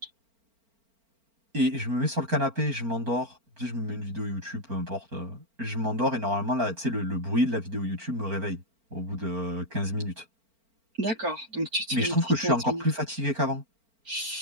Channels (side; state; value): left; late; 4.4 ms